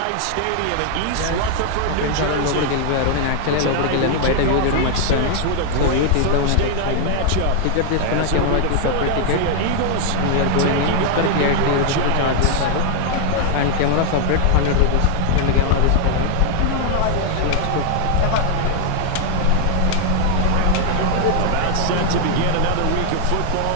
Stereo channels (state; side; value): different; both; correlation 0.00